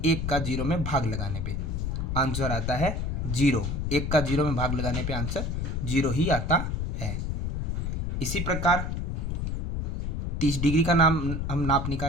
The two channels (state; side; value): noise; left; rumble, 1 dB below the sound